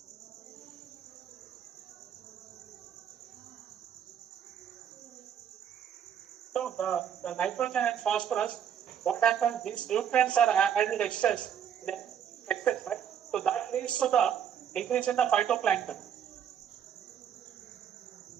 So the nitrogen and phosphorus, what happens? These nutrients are added excess, right? So that leads to the increase in the phytoplankton.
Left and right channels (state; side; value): quieter; left; 8.7 dB